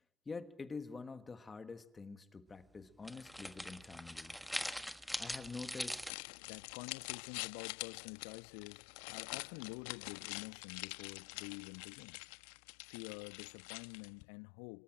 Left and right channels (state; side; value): drops out; right; at 6.1 s